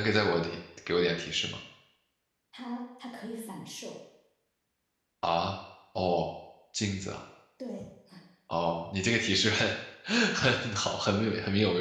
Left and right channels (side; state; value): both; identical; correlation 1.00